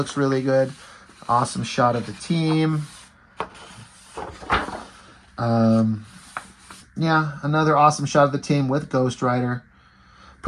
really good. Awesome shot of the team. Yeah, another awesome shot of the team with Ghost Rider.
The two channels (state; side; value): identical; both; correlation 1.00